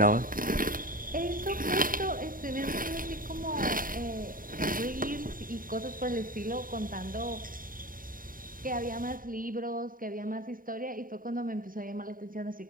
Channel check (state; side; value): late; left; 0.41 ms